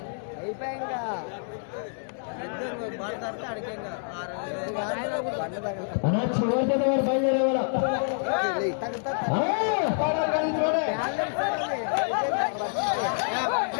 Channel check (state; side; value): silent; right; digital silence